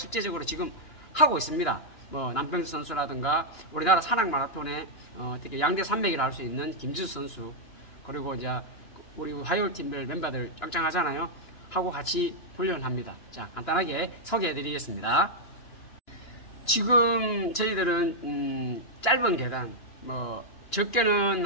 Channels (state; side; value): late; right; 2.9 ms